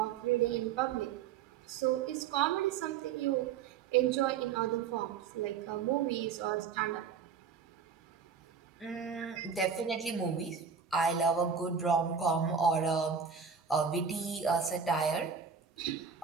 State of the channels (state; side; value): quieter; left; 6.5 dB